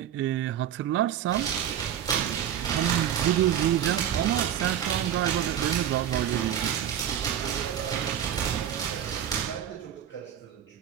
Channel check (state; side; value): quieter; left; 10.0 dB